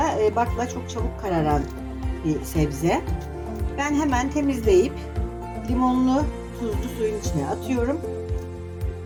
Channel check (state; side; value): identical; both; correlation 1.00